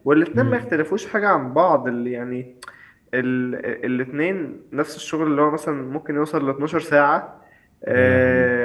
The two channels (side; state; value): both; identical; correlation 1.00